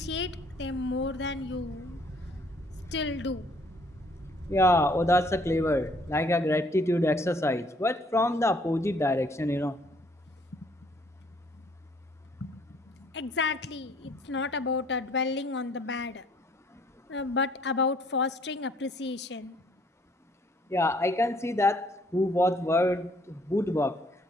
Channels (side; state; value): both; normal; correlation 0.62